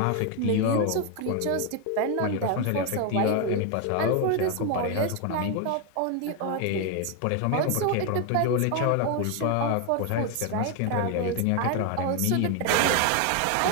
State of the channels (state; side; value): different; both; correlation 0.01